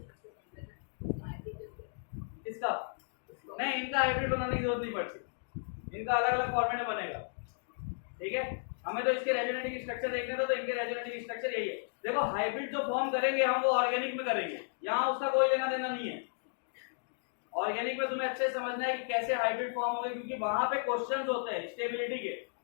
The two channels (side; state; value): right; silent; digital silence